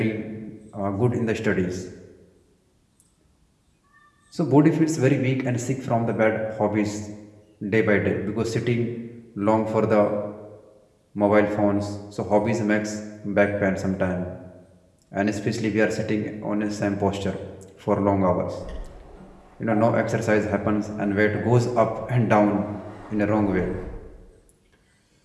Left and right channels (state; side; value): identical; both; correlation 1.00